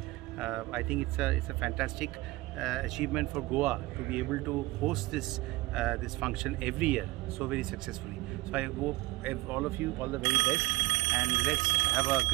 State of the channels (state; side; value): quieter; left; 20.2 dB